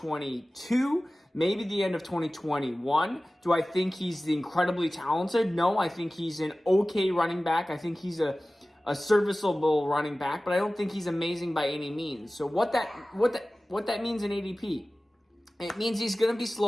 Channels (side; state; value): both; normal; correlation 0.97